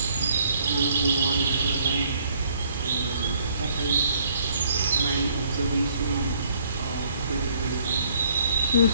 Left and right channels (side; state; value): both; inverted; correlation -0.64